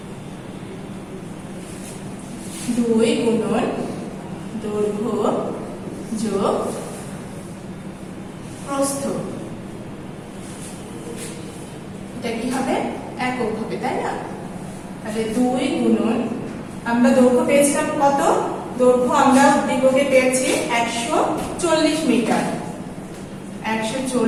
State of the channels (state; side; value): identical; both; correlation 1.00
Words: 2 গুণন দৈর্ঘ্য যোগ প্রস্থ। এটা কি হবে, একক হবে, তাই না? তাহলে 2 গুণন, আমরা দৈর্ঘ্য পেয়েছিলাম কত, দৈর্ঘ্য আমরা উদ্দীপকে পেয়েছি 140 মিটার।